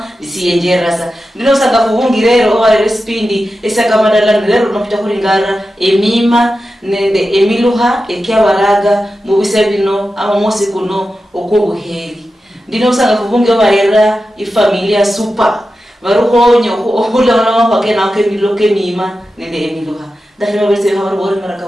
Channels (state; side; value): normal; both; correlation 0.92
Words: disiyenjerasa ndino usanga fuwungirero obarera esipindi esiyakamadala ndero nopita kuringara emima nende emiluha ekyabaraga mu bisebino abamosi kuno okobuheri ndino usanga kubunge barera ifamilia super baruhonyo ohulana mapakena kemiloke mima nende emiluha ndahira bese habar bore